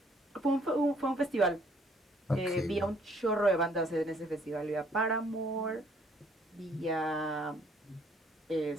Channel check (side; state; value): both; normal; correlation 0.63